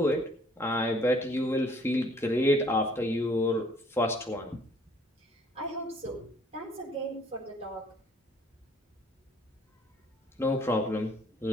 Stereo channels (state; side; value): normal; both; correlation 0.59